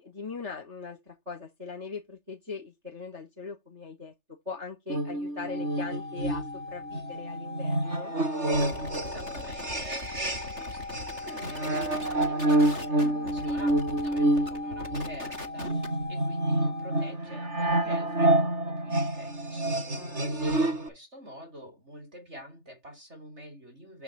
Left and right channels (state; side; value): late; left; 3.3 ms